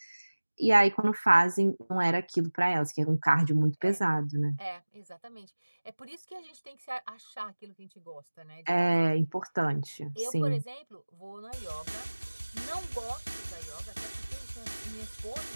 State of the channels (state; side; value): inverted; both; correlation -1.00